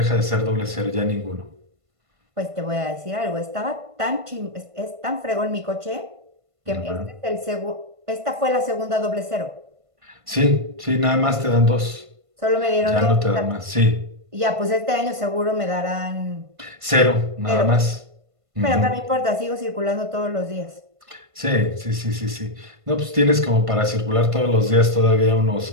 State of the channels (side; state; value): left; late; 1.5 ms